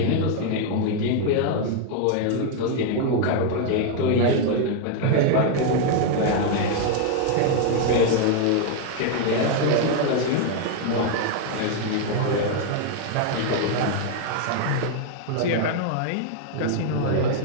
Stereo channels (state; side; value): different; both; correlation 0.00